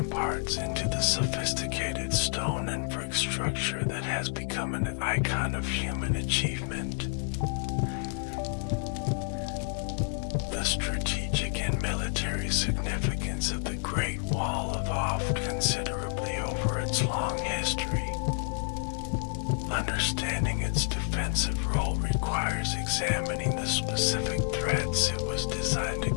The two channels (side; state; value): right; silent; 58 dB below the other